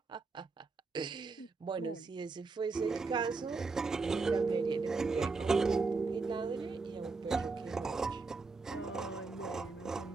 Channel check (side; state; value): left; quieter; 4.1 dB